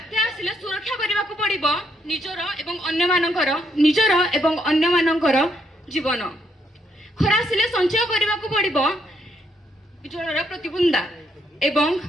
आसिले सुरक्षा करिबा को पड़िबो निजर एवं अन्य मानकर जीवन। खरा आसिले संचय करिबा को पड़िबो जलर प्रतिबुंदा एवं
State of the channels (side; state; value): both; normal; correlation 0.74